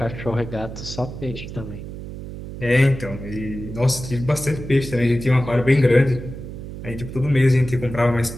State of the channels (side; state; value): right; noise; hum, 10 dB below the sound